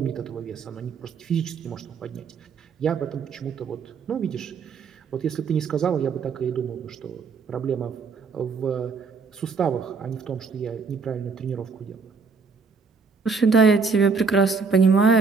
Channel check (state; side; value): quieter; left; 5.0 dB